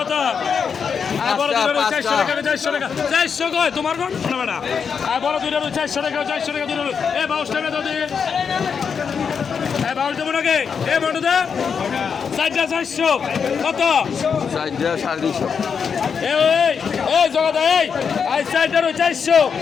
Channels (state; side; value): quieter; right; 6.4 dB